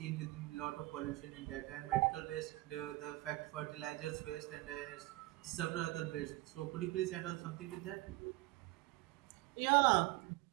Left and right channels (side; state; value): left; quieter; 20.3 dB